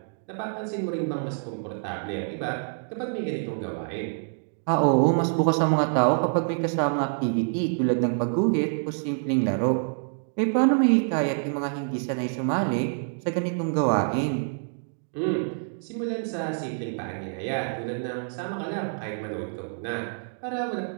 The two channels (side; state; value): left; silent; digital silence